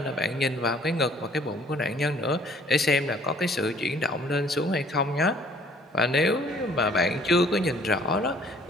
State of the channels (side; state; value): both; normal; correlation 0.57